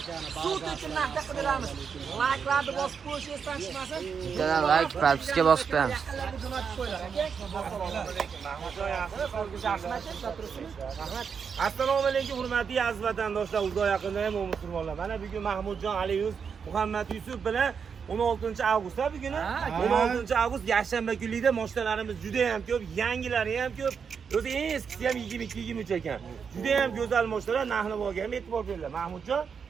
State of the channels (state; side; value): quieter; left; 6.4 dB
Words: Suv tekin narxda qidiramiz. Like'larni bosib qo'yish esdan chiqmasin. Bittadan like, propiska bosib qo'yamiz. Yaqinlarga jo'natib qo'yinglar aka. Assalomu alaykum hurmatli aziz vatandoshlar, uzoq yaqinda ham musulmonlar. Mana bugun Mahmudjon Aliyuz, Muhammad Yusuf bilan 16-avgust bugun. 16-avgust yakshanba kunida mashinalarimiz juda ham ko'p, yangilari ham ko'p. O'zi eskisi ham 22-23 ekan. Juda ham go'zal mashinalar, narx-navoga ham e'tibor beringlar. Mahmudjon,